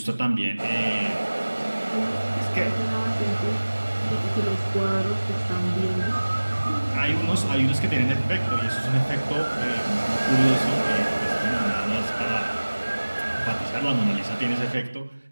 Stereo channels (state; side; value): inverted; both; correlation -1.00